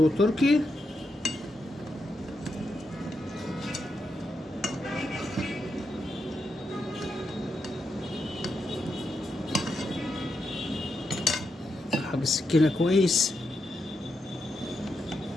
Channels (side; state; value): both; normal; correlation 0.84